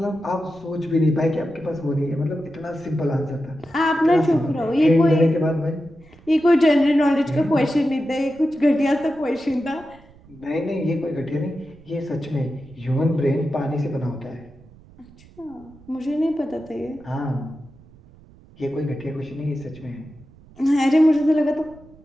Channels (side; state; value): right; noise; rumble, 24 dB below the sound